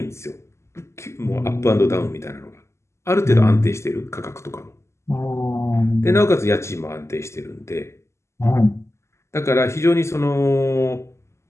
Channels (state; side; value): late; right; 0.13 ms